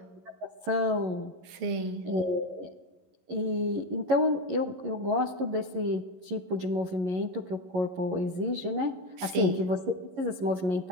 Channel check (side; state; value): left; late; 11 ms